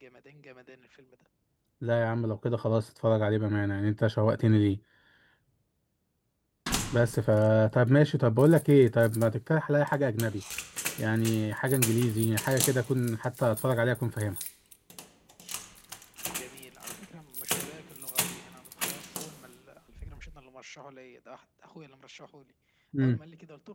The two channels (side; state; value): both; identical; correlation 1.00